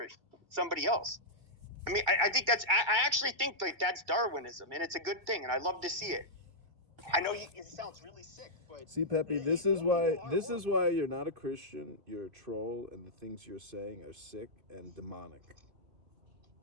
else. I mean, I think I actually think that's Darwinism, and it's a good thing, and I love to see it. I know it sounds really sick, but see, Pepe, this is why you're not a Christian. You're a troll, and the things you're saying are sick and demonic.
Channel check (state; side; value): late; left; 2.3 ms